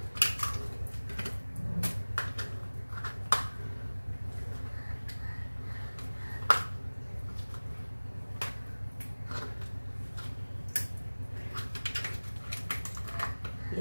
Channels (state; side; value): inverted; both; correlation -1.00